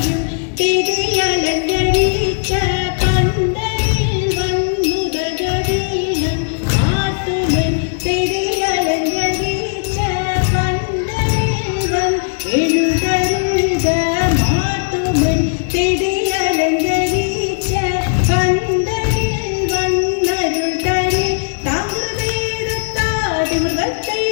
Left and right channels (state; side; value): silent; right; 68 dB below the other